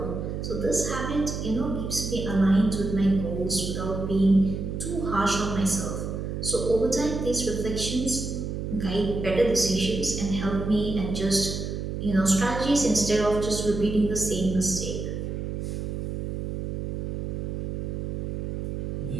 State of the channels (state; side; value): noise; right; hum, 4 dB below the sound